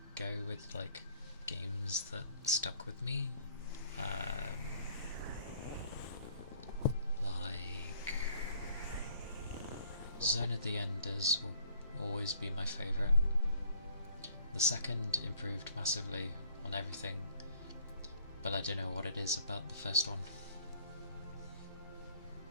go with like games that stuck with me, like Zone of the Enders will always be my favourite. The second improved massively on everything, but I don't know what it is about the first one.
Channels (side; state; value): both; inverted; correlation -0.57